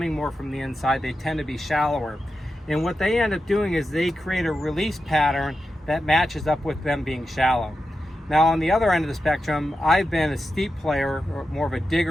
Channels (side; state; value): both; normal; correlation 0.90